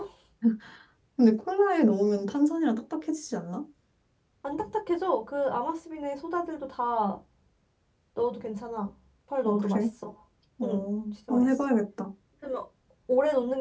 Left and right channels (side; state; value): both; identical; correlation 1.00